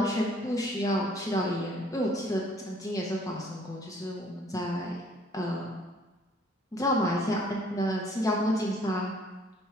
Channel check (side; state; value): both; normal; correlation 0.59